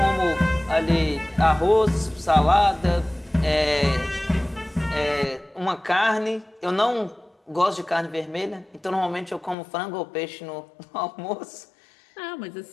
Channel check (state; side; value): drops out; right; at 9.6 s